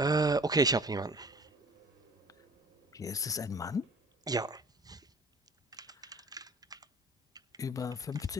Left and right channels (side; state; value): both; normal; correlation 0.48